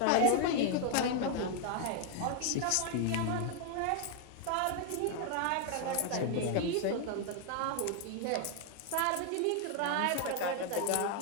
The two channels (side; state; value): both; different; correlation 0.00